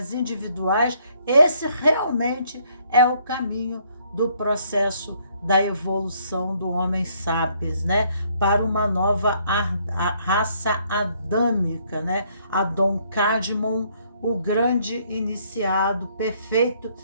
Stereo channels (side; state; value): both; inverted; correlation -0.67